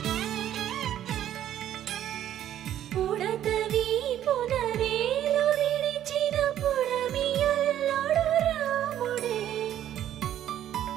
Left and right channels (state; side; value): quieter; left; 11.4 dB